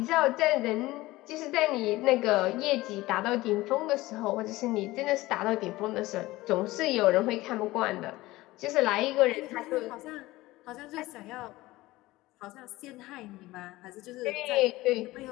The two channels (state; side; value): quieter; right; 18.6 dB